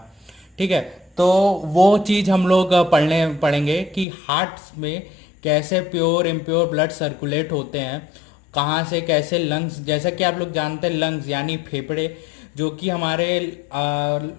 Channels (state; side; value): drops out; right; at 4.0 s